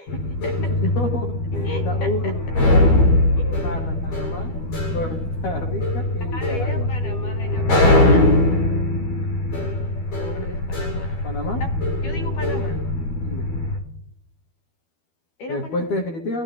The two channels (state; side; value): late; right; 12 ms